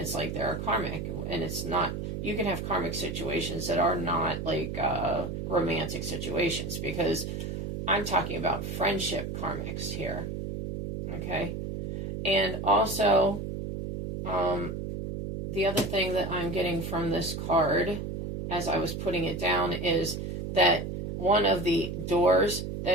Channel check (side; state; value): right; noise; hum, 5 dB below the sound